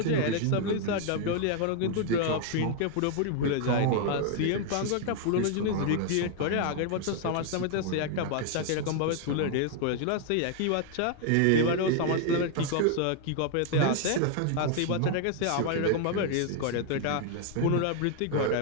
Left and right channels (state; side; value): different; both; correlation 0.00